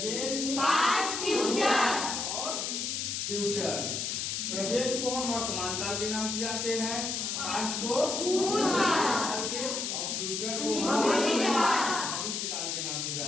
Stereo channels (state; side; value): noise; left; hiss, 2 dB below the sound